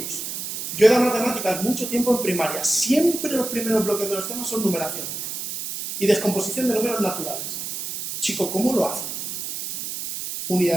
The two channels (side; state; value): right; noise; hiss, 6 dB below the sound